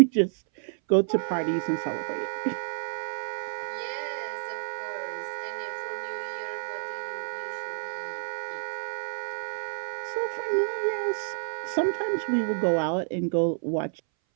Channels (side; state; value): left; silent; 58 dB below the other